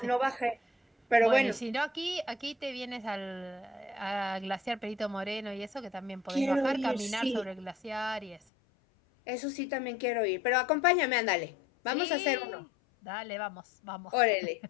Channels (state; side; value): drops out; right; at 8.4 s